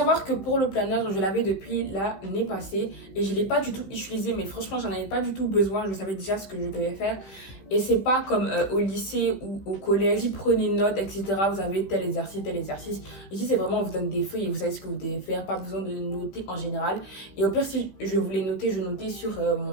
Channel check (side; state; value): right; late; 16 ms